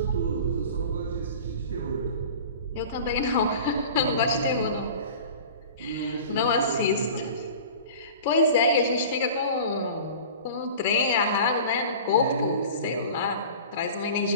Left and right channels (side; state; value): both; inverted; correlation -0.39